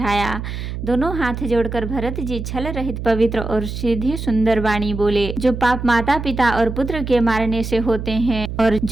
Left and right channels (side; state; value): right; noise; hum, 6 dB below the sound